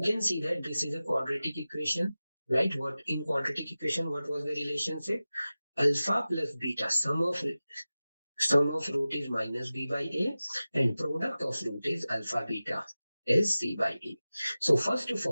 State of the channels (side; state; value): both; inverted; correlation -0.96